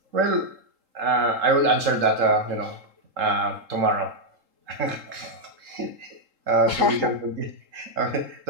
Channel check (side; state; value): left; late; 3.8 ms